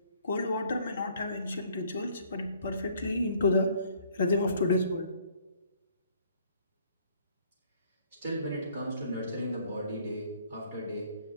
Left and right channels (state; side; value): inverted; both; correlation -0.61